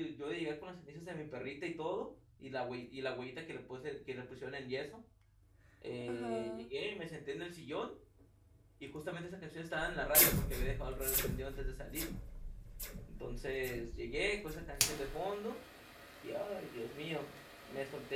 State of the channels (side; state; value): both; identical; correlation 1.00